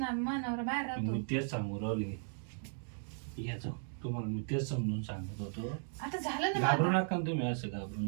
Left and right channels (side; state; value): left; silent; 54 dB below the other